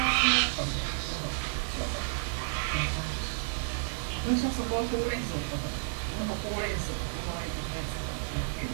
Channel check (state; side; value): silent; left; 57 dB below the other